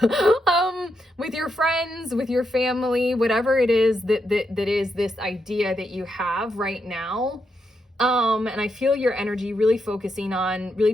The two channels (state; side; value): normal; both; correlation 0.82